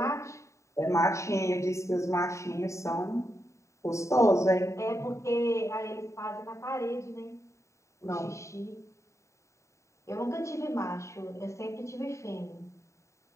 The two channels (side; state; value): right; late; 0.14 ms